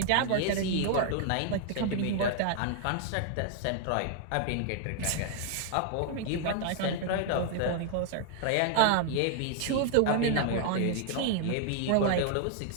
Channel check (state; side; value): different; both; correlation 0.00